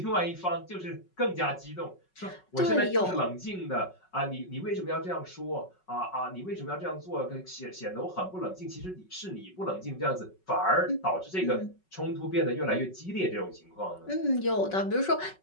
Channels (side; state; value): right; late; 5.4 ms